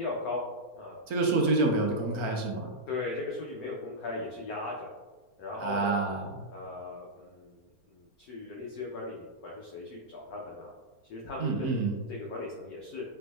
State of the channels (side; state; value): right; late; 4.3 ms